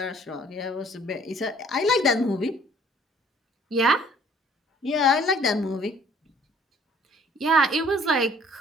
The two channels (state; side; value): normal; both; correlation 0.57